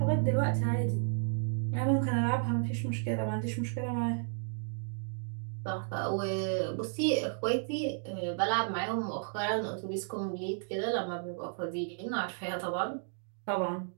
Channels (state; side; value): silent; left; digital silence